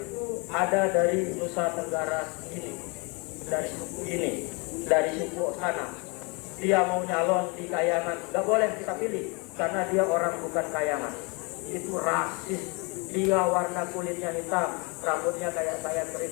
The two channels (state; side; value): quieter; right; 30.4 dB